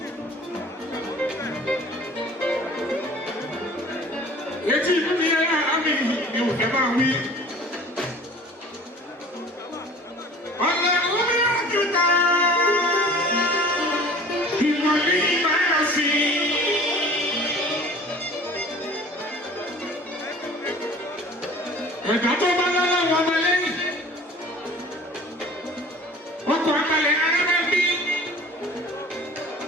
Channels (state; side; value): normal; both; correlation 0.45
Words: Etí ìlú ni ẹ àmì ni ò fẹ́ máa wí. Ọ̀nà omi àjùtà ìwọ̀lì máa sí. Ẹ̀dá tó bá lọ́wọ́ wọn máa lẹ́yìn. Ọkọ̀ àmàlẹ̀ arábẹ́bí.